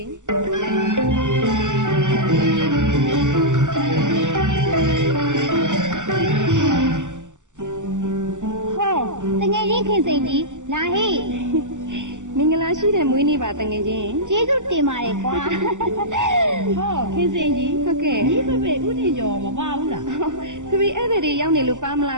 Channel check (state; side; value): late; left; 0.86 ms